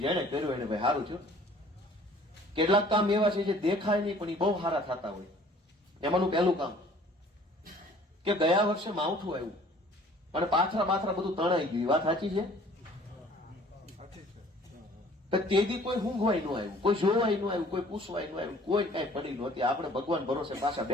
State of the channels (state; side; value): normal; both; correlation 0.53